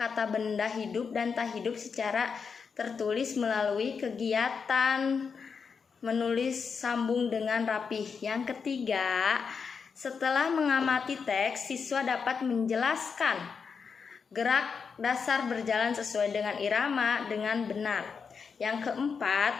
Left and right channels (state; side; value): quieter; right; 5.8 dB